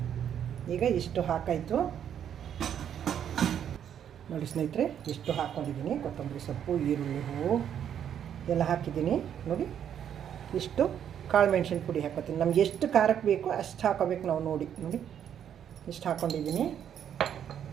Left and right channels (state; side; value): quieter; left; 9.2 dB